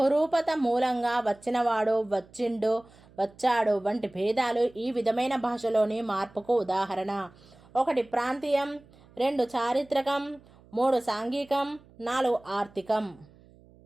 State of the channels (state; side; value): noise; right; hum, 26 dB below the sound